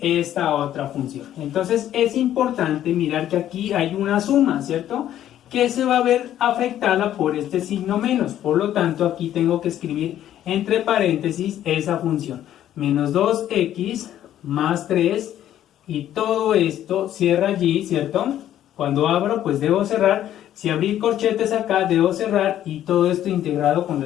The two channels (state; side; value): quieter; right; 11.7 dB